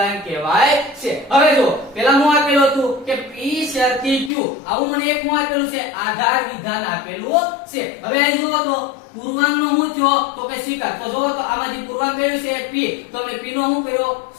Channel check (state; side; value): drops out; right; at 4.3 s